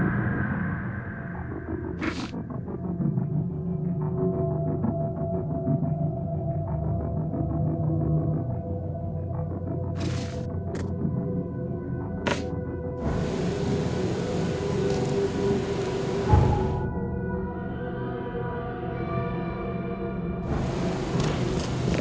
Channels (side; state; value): both; identical; correlation 1.00